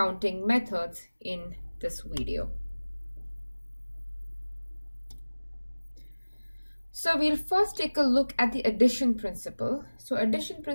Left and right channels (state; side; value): inverted; both; correlation -1.00